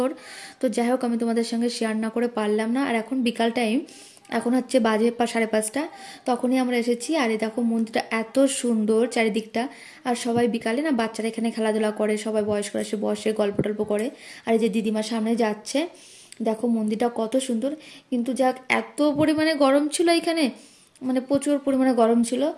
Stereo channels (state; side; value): identical; both; correlation 1.00